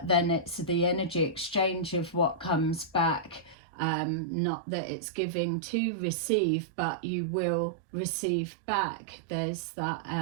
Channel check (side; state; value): left; drops out; at 3.6 s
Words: then it's the energy exchange of what comes back. Not that it's giving to receive, but you will receive back. There's that